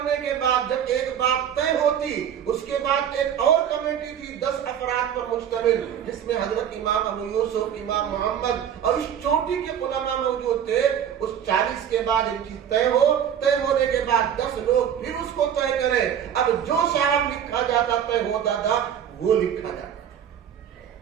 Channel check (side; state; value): left; quieter; 9.1 dB